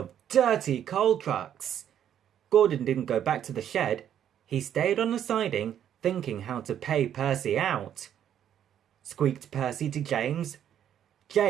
dirty coal trucks. Gordon didn't go back to the shed. He stayed on the siding, thinking how to pay Percy out. Squeaked Percy to James.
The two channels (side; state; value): left; quieter; 9.9 dB